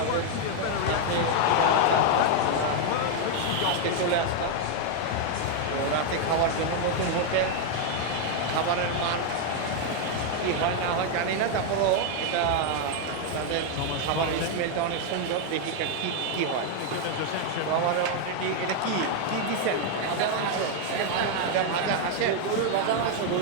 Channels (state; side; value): different; both; correlation 0.01